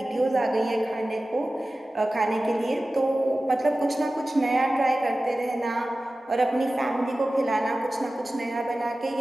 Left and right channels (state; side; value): normal; both; correlation 0.96